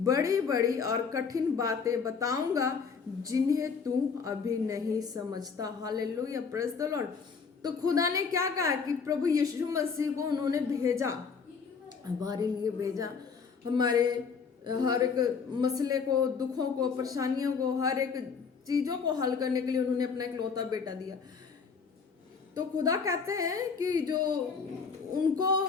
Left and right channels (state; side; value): quieter; right; 5.6 dB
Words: बड़ी और कठिन बातें बताऊंगा जिन्हें तू अभी नहीं समझता। Hallelujah, praise the Lord. तो खुदा ने क्या कहा कि प्रभु यीशु मसीह को उन्होंने भेजा, हमारे लिए भेजा, हमारे हर एक मसले को, दुखों को, परेशानियों को, हर एक चीज़ों को हल करने के लिए उन्होंने अपना इकलौता बेटा दिया। तो खुदा कहते हैं कि जो